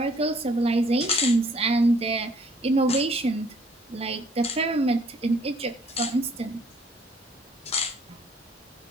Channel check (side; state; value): both; normal; correlation 0.61